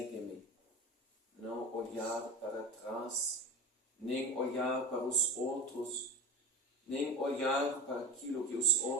Não olhar para trás, nem olhar para os outros, nem olhar para aquilo que os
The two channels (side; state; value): both; normal; correlation 0.30